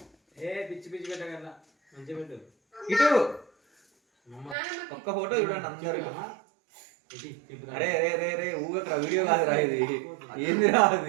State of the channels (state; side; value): drops out; left; at 4.5 s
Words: పిచ్చి పిచ్చి పెట్టగల మంచి పెట్టు ఇటు ఒక్క ఫోటో చూడండి అందరు అరే రే రే రే ఊగక వీడియో కాదు రా ఇది ఏంది రా